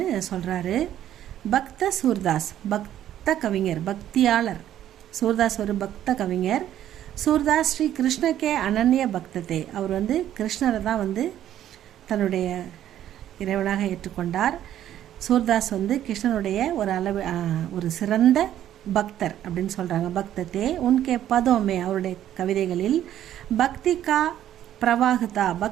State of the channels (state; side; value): quieter; left; 11.6 dB